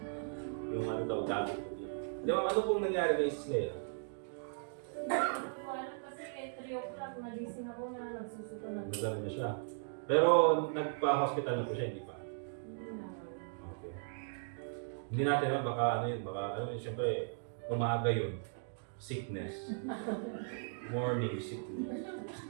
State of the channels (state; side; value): silent; left; digital silence